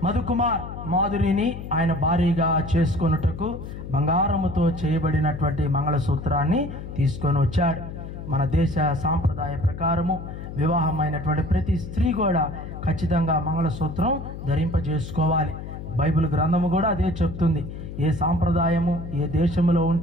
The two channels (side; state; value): left; noise; hum, 10 dB below the sound